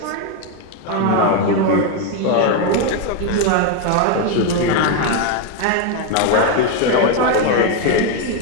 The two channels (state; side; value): different; both; correlation 0.02